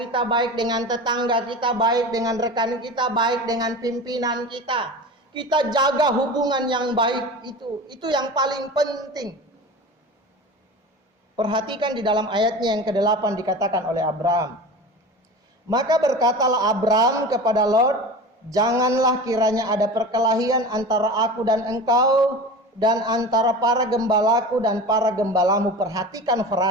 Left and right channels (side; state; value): both; normal; correlation 0.32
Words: baik dengan tetangga kita, baik dengan rekan kita, baik dengan pimpinan kita. Kita jaga hubungan yang baik itu. Itu yang paling penting. Perhatikan di dalam ayatnya yang ke-8 dikatakan oleh Abraham. Maka berkatalah Abraham kepada Lot, janganlah kiranya ada perkelahian antara aku dan engkau dan antara para gembalaku dan para gembalamu. Perhatikan